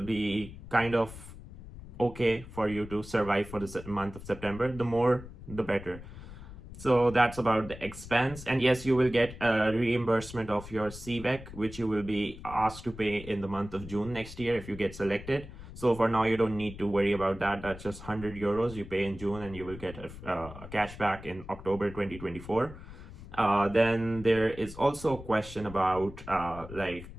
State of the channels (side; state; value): left; noise; rumble, 14 dB below the sound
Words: be kind of okay for you to survive for the month of September. The more, the better. So that's about the expense. And yes, you will get a reimbursement of your CVEC, which you will be asked to pay in the month of June next year if you get selected. So for now, you don't need to worry about that. That's just 100 euros you pay in June, and you will get a cash back in October 2024. Then there is also a question about like,